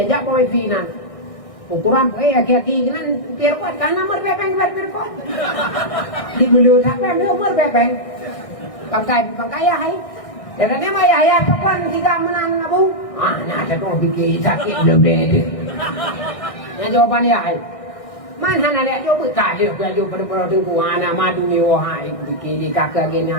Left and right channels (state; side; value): late; right; 1.6 ms